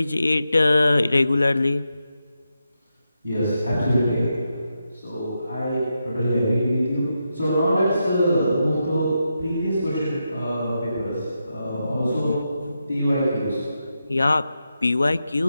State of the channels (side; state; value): both; inverted; correlation -0.87